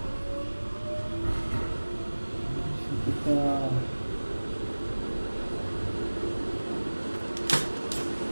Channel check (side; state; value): both; inverted; correlation -1.00